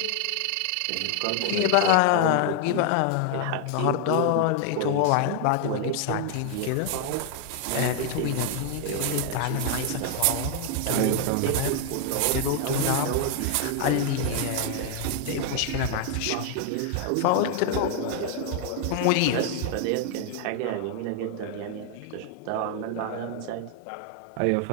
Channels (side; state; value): both; different; correlation 0.00